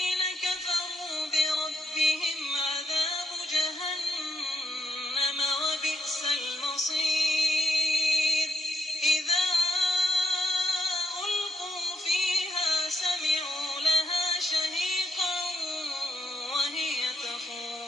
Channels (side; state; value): both; normal; correlation 0.79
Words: كفروا بربهم عذاب جهنم وبئس المصير إذا ألقوا فيها سمعوا لها شهيقا وهي